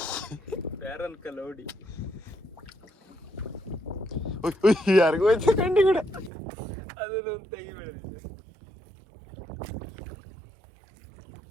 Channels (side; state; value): left; drops out; at 6.3 s